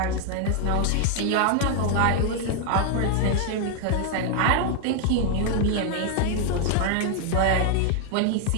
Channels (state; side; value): different; both; correlation 0.00